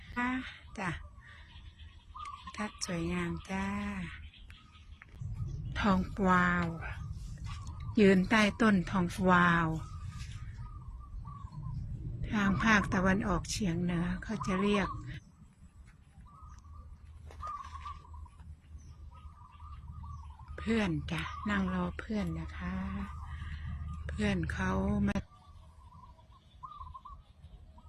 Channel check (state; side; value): identical; both; correlation 1.00